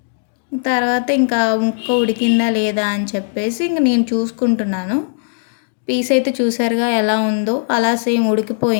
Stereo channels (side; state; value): right; silent; digital silence